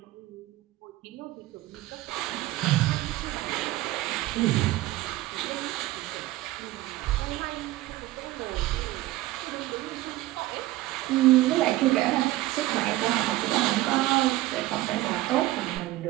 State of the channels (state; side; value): quieter; left; 17.1 dB